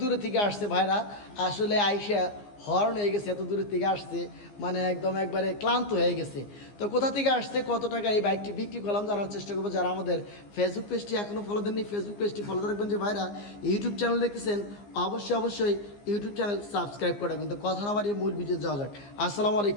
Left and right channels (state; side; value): late; right; 15 ms